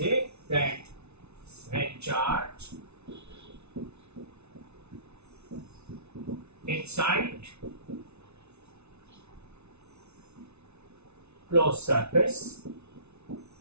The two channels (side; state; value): left; late; 0.81 ms